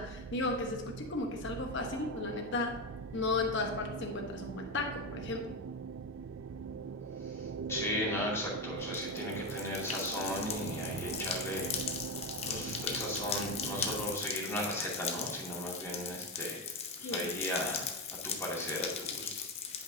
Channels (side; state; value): both; normal; correlation 0.14